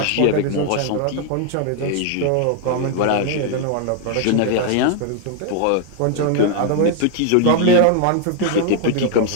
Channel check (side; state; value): both; different; correlation 0.00